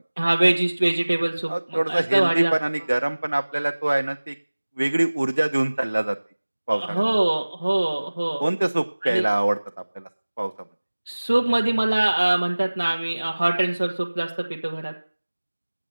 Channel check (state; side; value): inverted; both; correlation -1.00